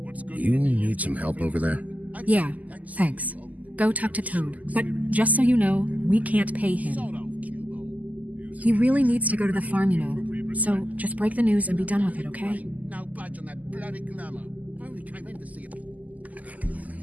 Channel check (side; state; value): left; late; 0.078 ms